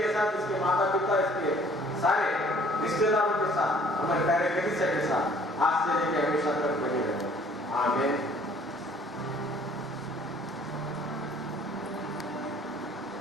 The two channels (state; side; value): normal; both; correlation 0.56